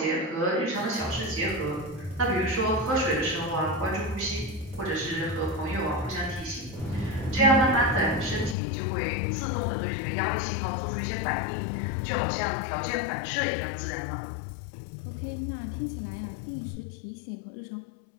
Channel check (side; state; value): right; drops out; at 8.6 s